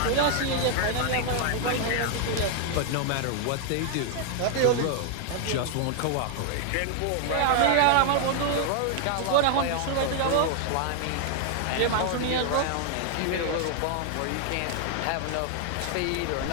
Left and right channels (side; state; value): both; different; correlation 0.00